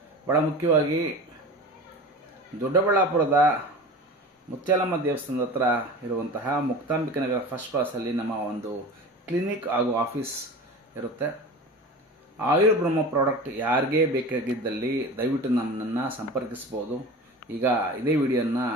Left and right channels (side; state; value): both; normal; correlation 0.34